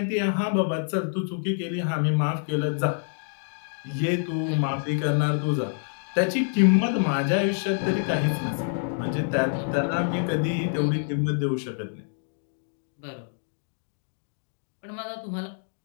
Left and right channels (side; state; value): right; silent; digital silence